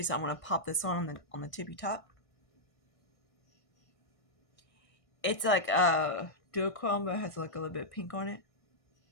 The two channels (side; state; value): right; late; 1.6 ms